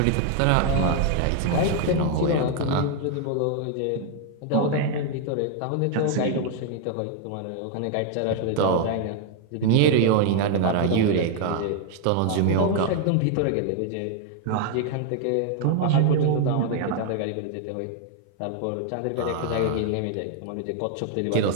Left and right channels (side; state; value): both; different; correlation 0.00